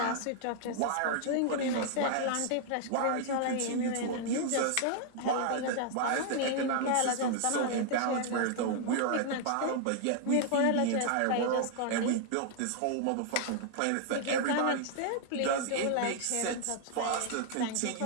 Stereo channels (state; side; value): different; both; correlation 0.00